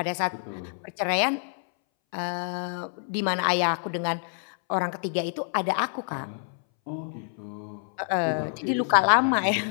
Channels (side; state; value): right; silent; 60 dB below the other